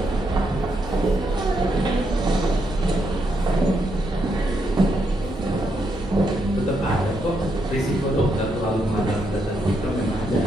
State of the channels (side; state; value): both; normal; correlation 0.79